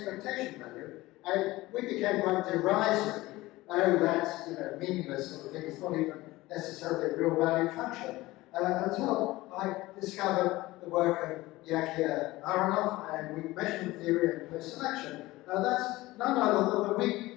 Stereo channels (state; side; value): quieter; right; 18.8 dB